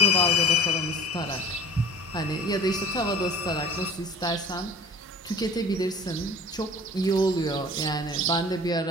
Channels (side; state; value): both; normal; correlation 0.45